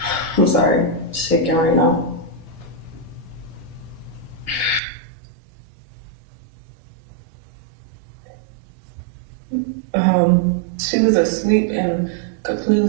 I'm sorry, shaking right now. She was asleep and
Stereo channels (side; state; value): left; drops out; at 4.8 s